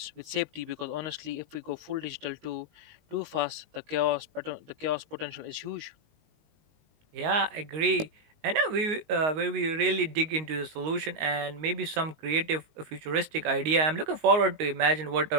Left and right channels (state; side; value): late; left; 19 ms